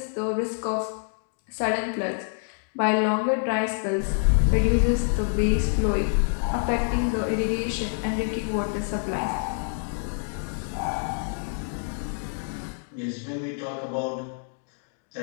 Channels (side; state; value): right; silent; 60 dB below the other